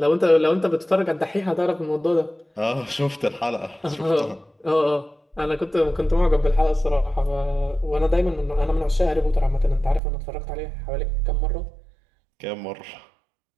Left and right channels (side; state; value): left; drops out; at 10.0 s